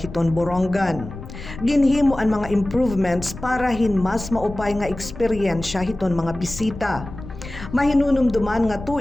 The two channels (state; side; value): noise; left; rumble, 13 dB below the sound